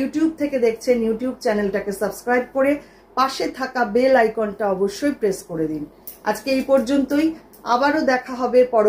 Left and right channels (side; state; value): both; identical; correlation 1.00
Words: থেকে দেখছেন ইউটিউব চ্যানেলটাকে সাবস্ক্রাইব করে পাশে থাকা বেল আইকনটা অবশ্যই প্রেস করে দিন। আজকে এই পর্যন্তই, আবারও দেখা হবে